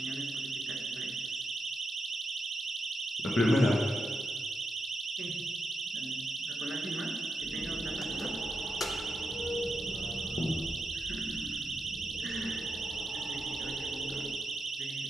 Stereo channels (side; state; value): both; normal; correlation 0.86